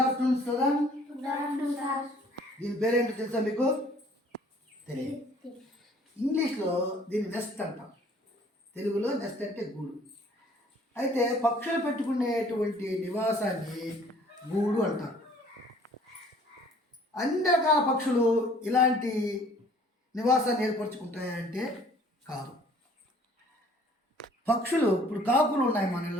afternoon student. Good afternoon sir. దీని పేరేంటో తెలుసా మీకు? తెలియదు. ఇంగ్లీష్లో దీన్ని నెస్ట్ అంటాం, తెలుగులో నెస్ట్ అంటే గూడు. అయితే పక్షులు పెట్టుకునేటువంటి నివాసాన్ని గూడు అంటారు. అన్ని రకాల పక్షులు ఇలాంటి నివాసాన్ని ఏర్పరచుకుంటాయంటే కాదు. పక్షులు ఇప్పుడు కాకులు ఉన్నాయి మన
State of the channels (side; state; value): both; normal; correlation 0.56